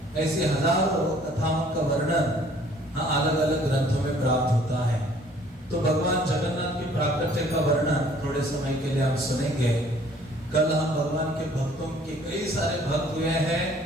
ऐसी हजारों कथाओं का वर्णन अलग अलग ग्रंथों में प्राप्त होता है। तो भगवान जगन्नाथ की प्राकट्य का वर्णन थोड़े समय के लिए हम सुनेंगे। कल हम भगवान के भक्तों के कई सारे भक्त हुए हैं,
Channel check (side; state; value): both; normal; correlation 0.57